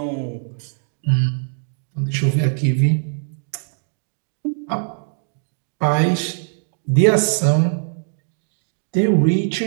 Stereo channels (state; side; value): silent; left; digital silence